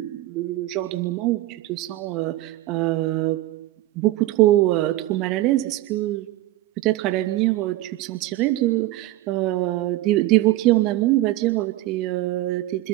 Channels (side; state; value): left; quieter; 16.4 dB